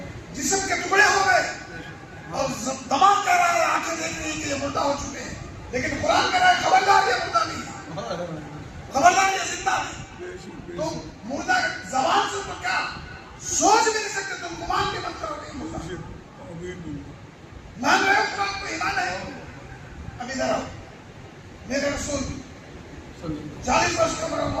جسم کے ٹکڑے ہو گئے, اور دماغ کہہ رہا ہے, آنکھیں دیکھ رہی ہیں کہ یہ مردہ ہو چکے ہیں. لیکن قرآن کہہ رہا ہے خبردار یہ مردہ نہیں, خبردار یہ زندہ نہیں. تم مردہ زبان سے تو کیا سوچ بھی نہیں سکتے, تم گمان بھی مت کرو گے مردہ. مان رہے ہو قرآن کو, ایمان ہے. اب ادھر آؤ. میرے رسول 40 برس کا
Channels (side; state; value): both; identical; correlation 1.00